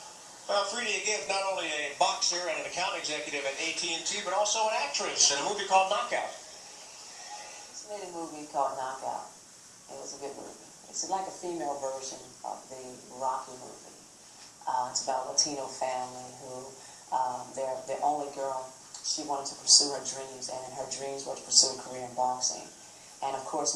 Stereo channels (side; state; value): both; identical; correlation 1.00